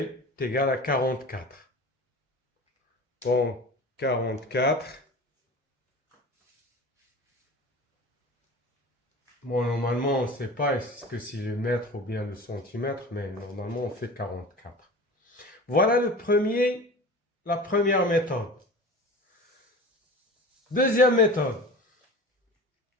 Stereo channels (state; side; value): normal; both; correlation 0.36